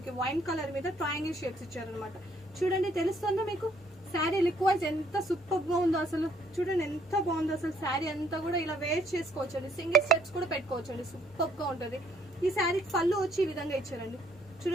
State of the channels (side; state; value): both; normal; correlation 0.65